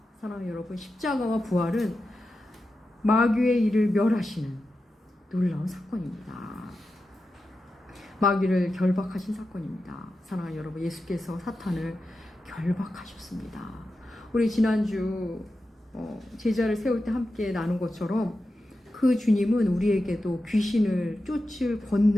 사랑하는 여러분, 십자가와 부활은 마귀의 일을 멸하시는 놀라운 사건입니다. 마귀를 결박하신 사건입니다. 사랑하는 여러분, 예수께서 사탄을 결박하셨습니다. 우리 지난주 제자를 세울 때 함께 나눈 것처럼 그 주님은 우리에게도 귀신을 쫓을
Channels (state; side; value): normal; both; correlation 0.91